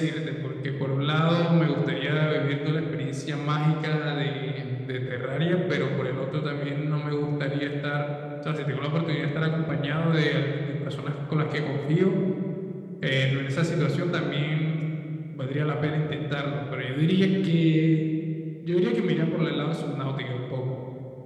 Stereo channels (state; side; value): identical; both; correlation 1.00